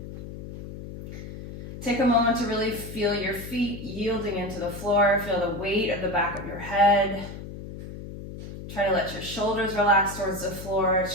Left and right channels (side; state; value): left; noise; hum, 11 dB below the sound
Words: Take a moment to really feel your feet yielding into the floor. Feel the weight of the back of your head. Try to let your shoulders relax towards the floor.